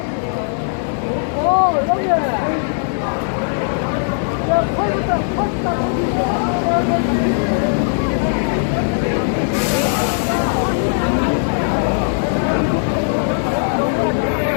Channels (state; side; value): silent; right; 60 dB below the other